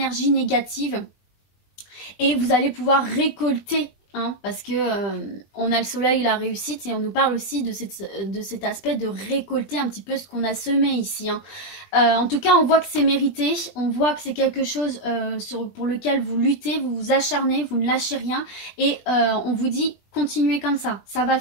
négatives et vous allez pouvoir récolter, hein, parce que on a le soleil, la réussite, et on nous parle aussi de cet aspect de récolter un petit peu ce qu'on a semé ici. Hein. En tout cas, on voit que c'est mérité, on voit que c'est quelque chose pour lequel vous luttez, vous vous acharnez, vous ne lâchez rien, et on vous dit continuez comme ça va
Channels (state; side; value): late; right; 20 ms